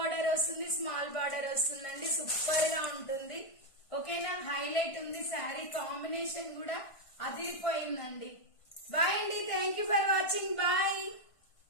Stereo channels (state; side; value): late; right; 1.5 ms